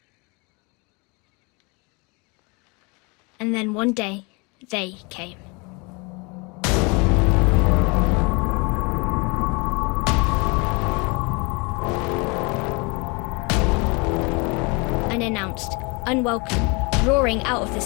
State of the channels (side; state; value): right; quieter; 29.4 dB